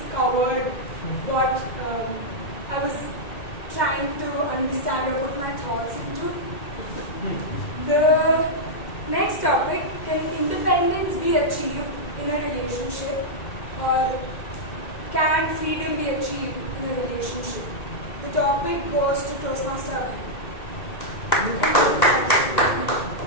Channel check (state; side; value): late; right; 2.1 ms